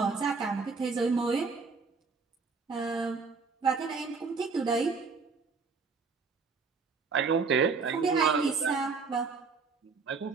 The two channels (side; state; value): left; quieter; 4.8 dB